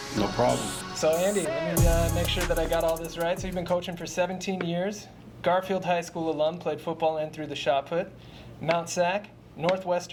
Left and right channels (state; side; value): identical; both; correlation 1.00